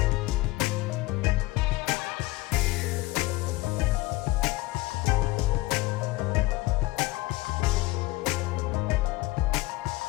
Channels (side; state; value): right; quieter; 20.0 dB